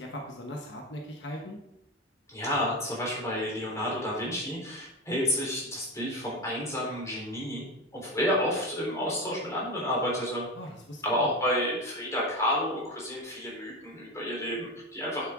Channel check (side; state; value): both; normal; correlation 0.20